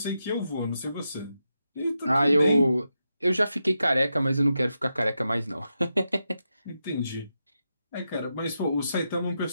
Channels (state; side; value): inverted; both; correlation -0.86